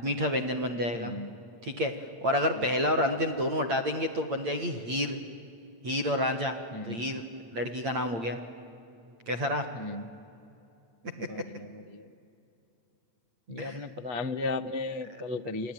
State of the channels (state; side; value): late; left; 8.8 ms